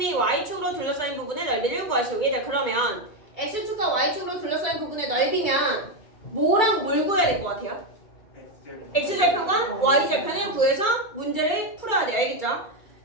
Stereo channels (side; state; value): right; late; 2.3 ms